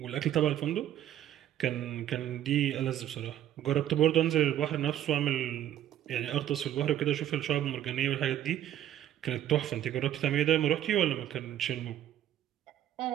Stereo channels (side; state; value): left; quieter; 11.6 dB